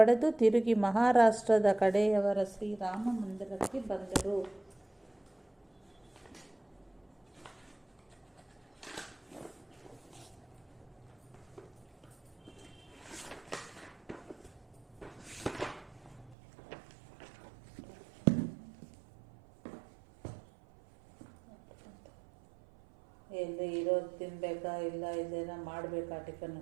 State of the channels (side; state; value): left; drops out; at 16.4 s